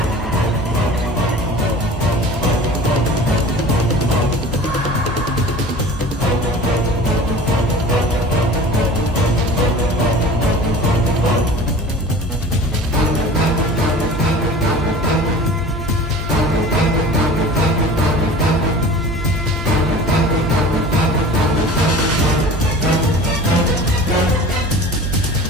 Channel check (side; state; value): both; normal; correlation 0.40